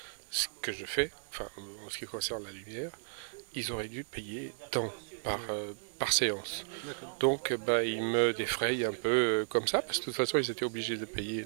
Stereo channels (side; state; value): left; silent; digital silence